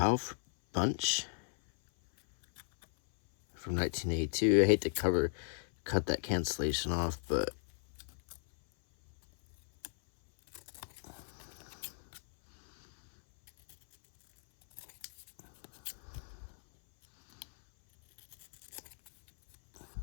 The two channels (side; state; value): right; silent; 54 dB below the other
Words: Bunch from 1982. I hate to cut that cancellation off, but